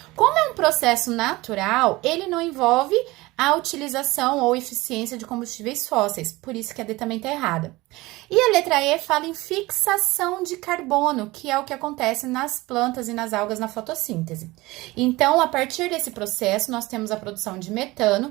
Como é um processo natural, ele não envolve a utilização ou eficiência de combustíveis fósseis, por isso que a D também está errada. E a letra E fala em fixação de carbono, que é o que acontece nas plantas e nas algas na fotossíntese. Então, a partir desse processo, nós temos a produção de metano,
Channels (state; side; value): quieter; left; 20.7 dB